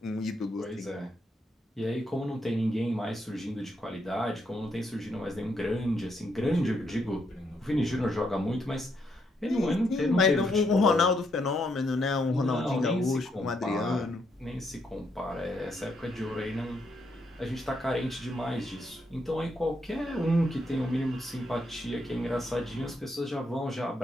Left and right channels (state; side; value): normal; both; correlation 0.77